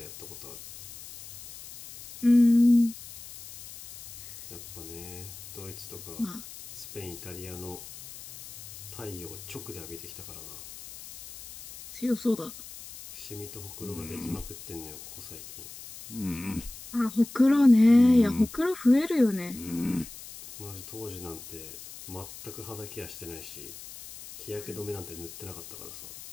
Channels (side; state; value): left; noise; hiss, 14 dB below the sound